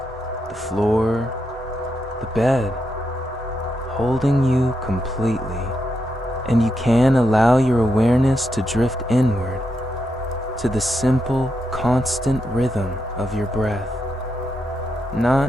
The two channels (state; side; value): normal; both; correlation 0.83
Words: the floor, the bed, holding you completely. And you can allow your awareness to drift inward to the simple, constant rhythm of your breath,